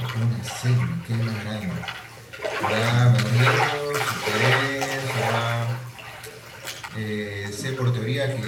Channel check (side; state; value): both; identical; correlation 1.00